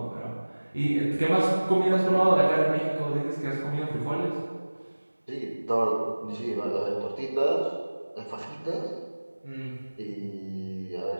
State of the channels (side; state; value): both; inverted; correlation -1.00